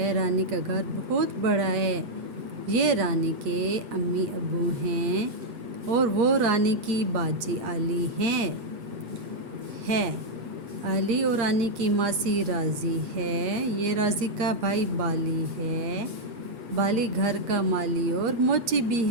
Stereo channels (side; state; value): left; late; 8.6 ms